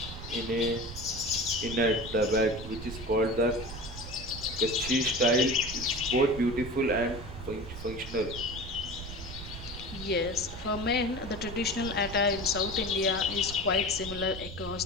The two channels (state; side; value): noise; right; rumble, 11 dB below the sound